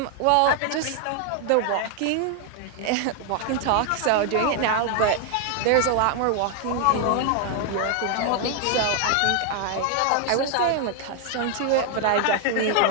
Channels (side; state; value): both; different; correlation 0.00